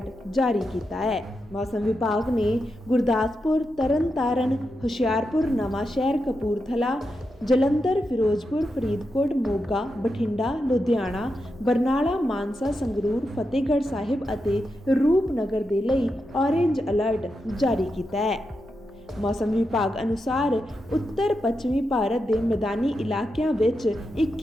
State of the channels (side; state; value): both; normal; correlation 0.87